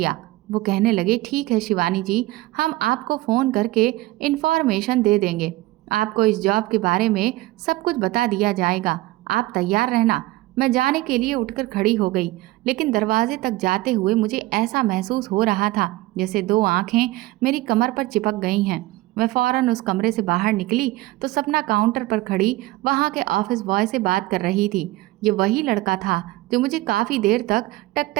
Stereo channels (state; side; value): quieter; left; 18.7 dB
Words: वो कहने लगे, ठीक है शिवानी जी, हम आपको फ़ोन करके इन्फॉर्मेशन दे देंगे। आपको इस जॉब के बारे में सब कुछ बता दिया जाएगा। आप तैयार रहना। मैं जाने के लिए उठकर खड़ी हो गई, लेकिन दरवाजे तक जाते हुए मुझे ऐसा महसूस हो रहा था जैसे दो आंखें मेरी कमर पर चिपक गई हैं। मैं फौरन उस कमरे से बाहर निकली तो सपना काउंटर पर खड़ी वहाँ के ऑफिस बॉय से बात कर रही थी। ये वही लड़का था जो मुझे काफ़ी देर तक